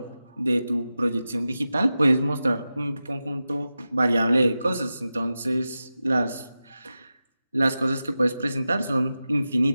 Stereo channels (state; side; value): inverted; both; correlation -0.93